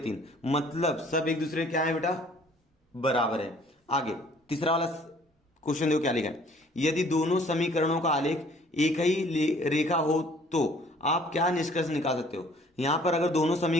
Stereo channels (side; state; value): both; normal; correlation 0.56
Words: मतलब सब एक दूसरे क्या है बेटा? बराबर है। आगे तीसरा वाला क्वेश्चन देखो क्या लिखा है। यदि दोनों समीकरणों का आलेख एक ही रेखा हो तो आप क्या निष्कर्ष निकाल सकते हो? यहां पर अगर दोनों